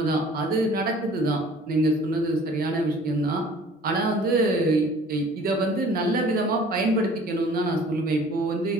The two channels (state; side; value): normal; both; correlation 0.51